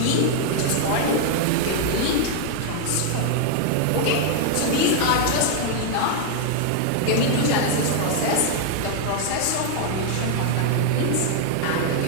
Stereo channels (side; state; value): both; different; correlation 0.00